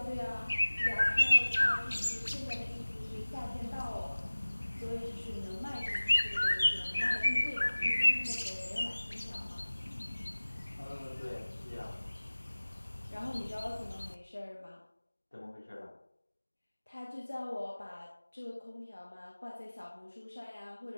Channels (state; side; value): inverted; both; correlation -1.00